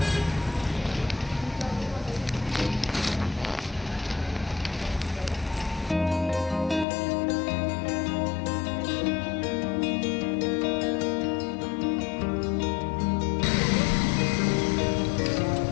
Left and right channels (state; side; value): drops out; right; at 6.9 s